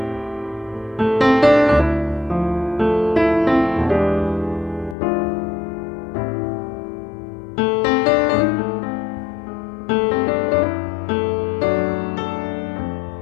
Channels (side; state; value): right; drops out; at 5.0 s